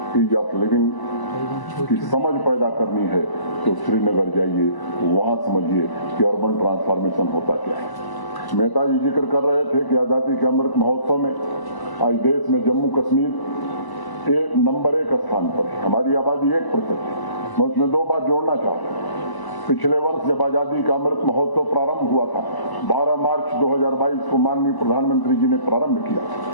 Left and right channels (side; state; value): right; late; 1.0 ms